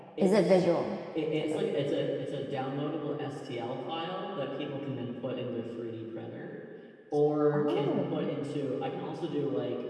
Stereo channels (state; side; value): identical; both; correlation 1.00